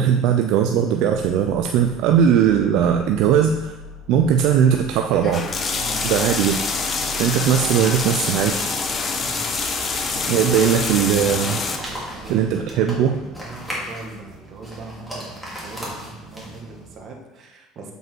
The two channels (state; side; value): quieter; left; 5.7 dB